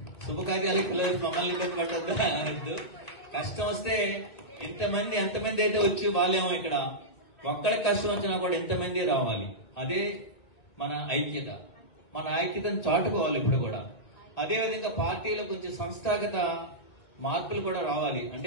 శుభకార్యాలకు పిలవచ్చి మమ్మల్ని ఇబ్బంది పడద్దు అనద్దు. కష్టం వస్తే ఎంతమంది అయితే వచ్చి వాళ్ళేమో ఇక్కడ ఒక్కరికి కష్టం వచ్చినా కూడా ఎంతమంది రావాలి. అదే మన ఐక్యత. మన ఐక్యతను చాటుకోవాలి ఇప్పుడు కూడా. అదేవిధంగా పార్టీలో కొంచెం సంస్థాగత మార్పులు కూడా రావాలి.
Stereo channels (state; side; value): late; right; 2.2 ms